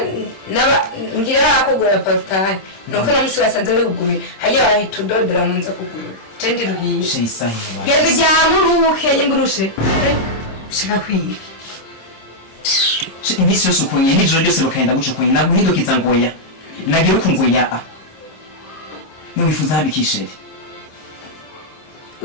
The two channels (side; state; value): right; late; 26 ms